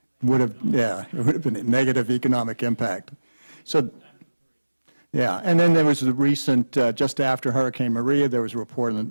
would have been a negative economic impact. So, yeah, and then there was the recent, just after Hurricane Maria, there was a report on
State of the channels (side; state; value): both; inverted; correlation -1.00